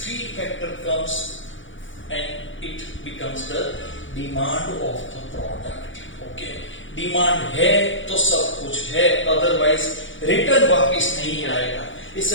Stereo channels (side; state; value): right; late; 0.56 ms